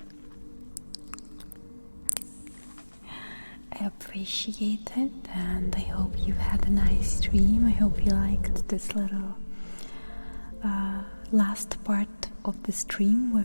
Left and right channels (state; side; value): inverted; both; correlation -1.00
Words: I appreciate it, and I hope you've had a nice stream. I hope you liked this little last part of the stream where